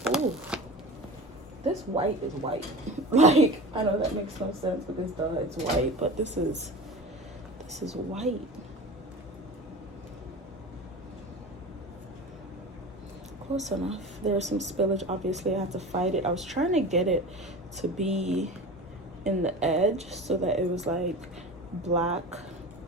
Oh, this white is white. Like, I know that makes no sense because duh, it's white, but this is white. Close enough. There's some spillage, obviously I have to fight it. I was trying to get it to be in the edge so that it was like black.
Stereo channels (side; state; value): both; normal; correlation 0.33